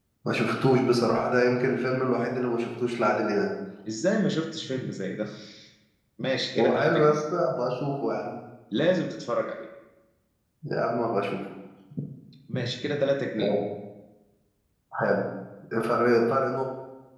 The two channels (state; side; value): identical; both; correlation 1.00